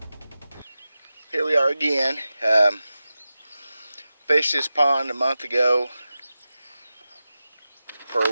Here we are again. Fished this pond a month ago for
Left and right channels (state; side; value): inverted; both; correlation -0.94